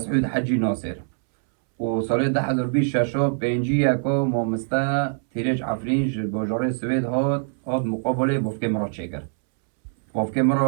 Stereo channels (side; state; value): left; silent; 63 dB below the other